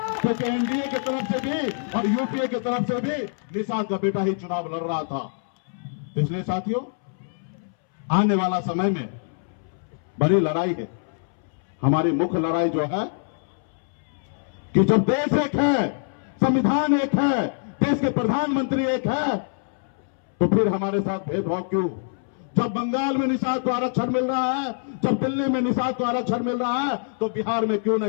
क्योंकि एनडीए की तरफ से भी और यूपीए की तरफ से भी निषाद का बेटा ही चुनाव लड़ रहा था। इसलिए साथियों, आने वाला समय में बड़ी लड़ाई है। हमारी मुख्य लड़ाई जो है कि जब देश एक है, संविधान एक है, देश के प्रधानमंत्री एक है, तो फिर हमारे साथ भेदभाव क्यों? जब बंगाल में निषाद को आरक्षण मिल रहा है, जब दिल्ली में निषाद को आरक्षण मिल रहा है, तो बिहार में क्यों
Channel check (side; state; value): right; silent; 62 dB below the other